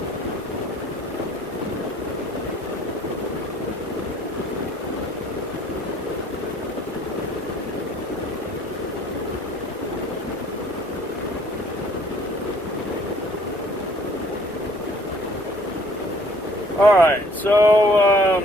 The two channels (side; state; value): both; normal; correlation 0.57